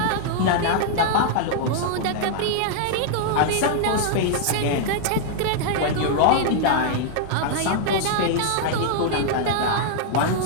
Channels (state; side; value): different; both; correlation -0.01